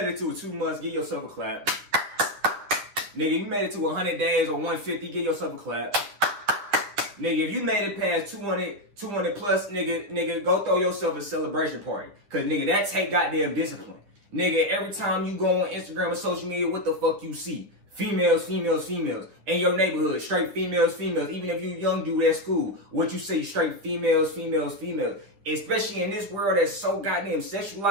it to 2 months, give yourself a clap. Nigga, if you made it to 100 days or 150, give yourself a clap. Nigga, if you made it past 200 plus, nigga, go throw yourself a celebration party. Cause nigga, that take goddamn discipline. Nigga, every time you go on Instagram or social media, what the fuck you see? females, females, females. In your neighborhood, straight females, females. Even if you young dude at school, what you say, straight females, females, females. Especially in this world that's so goddamn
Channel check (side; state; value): left; late; 9.9 ms